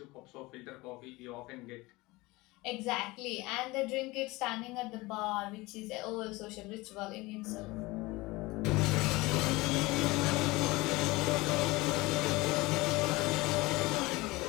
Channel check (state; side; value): quieter; right; 21.8 dB